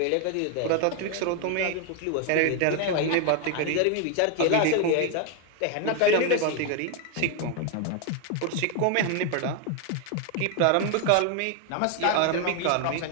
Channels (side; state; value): both; different; correlation 0.01